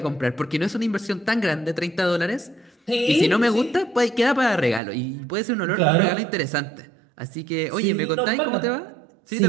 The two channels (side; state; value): left; drops out; at 4.8 s